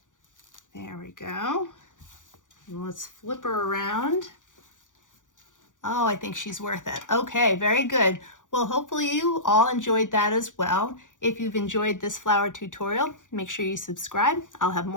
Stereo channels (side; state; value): right; late; 0.87 ms